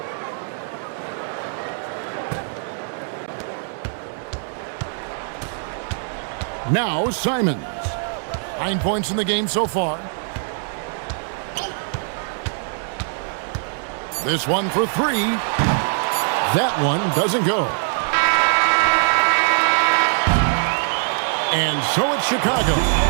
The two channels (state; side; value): silent; left; 63 dB below the other